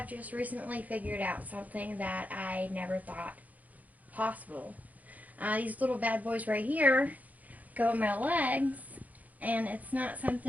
just recently figured out something that I never thought possible. These little bad boys right here go on my legs, and it's not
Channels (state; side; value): late; left; 0.078 ms